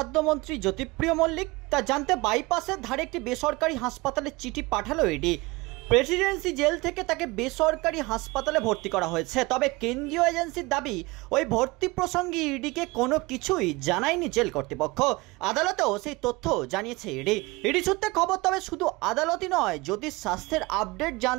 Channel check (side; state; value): left; quieter; 23.1 dB